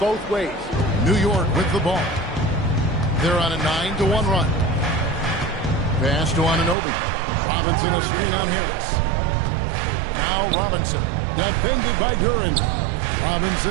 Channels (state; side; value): drops out; left; at 6.8 s